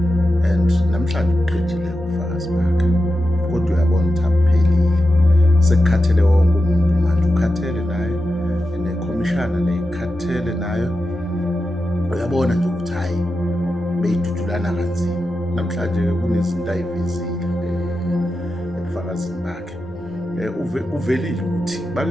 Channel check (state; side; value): normal; both; correlation 0.90